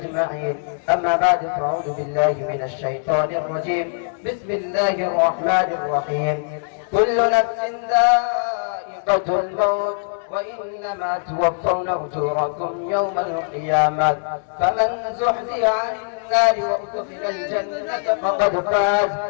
أما بعد فأعوذ بالله من الشيطان الرجيم. بسم الله الرحمن الرحيم. كل نفس ذائقة الموت وإنما توفون أجوركم يوم القيامة فمن زحزح عن النار وأدخل الجنة فقد فاز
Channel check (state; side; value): silent; right; 65 dB below the other